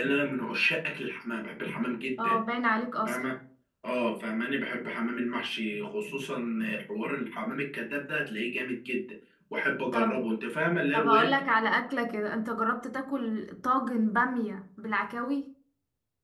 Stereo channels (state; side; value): identical; both; correlation 1.00